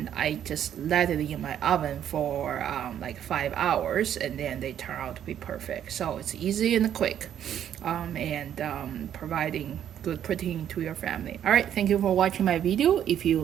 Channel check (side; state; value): left; quieter; 10.0 dB